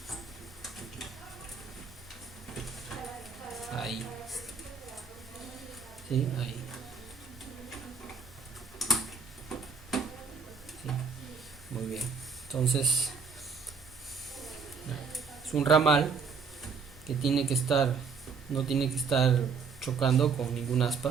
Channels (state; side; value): quieter; left; 5.5 dB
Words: Ahí. Sí, ahí. Sí. Muy bien. Entonces, es un ramal que tiene que estar, no tiene que estar chocando con ningún